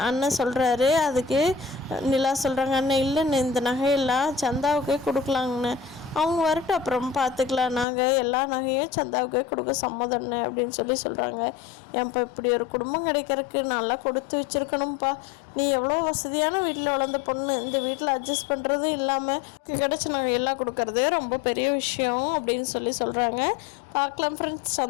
அண்ணன் சொல்கிறாரு. அதுக்கு நிலா சொல்கிறாங்க, அண்ணன் இல்லைன்னு இந்த நகையெல்லாம் சந்தாவுக்கே கொடுக்கலாங்கண்ணே, அவங்க வரட்டும் அப்புறம் பார்த்துக்கலாம், நாங்கள் எல்லா நகையும் சந்தாவுக்கே கொடுக்க சம்மதம்னு அப்படின்னு சொல்கிறாங்க. ஏன்ப்பா இப்படி ஒரு குடும்பம் கிடைக்கிறதுக்கு நல்லா கொடுத்து வச்சுருக்கணும்ப்பா, நீ எவ்வளோ வசதியான வீட்டில் வளர்ந்த பொண்ணு, இந்த வீட்டில் அட்ஜஸ்ட் பண்ணுறதும் இல்லாமல் கிடச்சி நாங்கள் எல்லாம் கொடுக்கறதே ரொம்ப பெரிய விஷயம் அப்படின்னு சொல்கிறாங்க. பார்க்கலாம் ஃப்ரெண்ட்ஸ்,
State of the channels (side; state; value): right; drops out; at 7.9 s